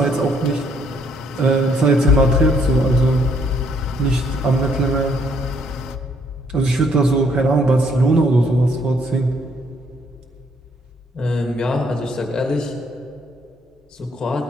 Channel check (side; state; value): both; normal; correlation 0.68